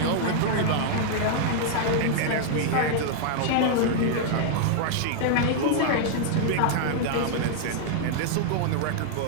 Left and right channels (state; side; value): different; both; correlation -0.01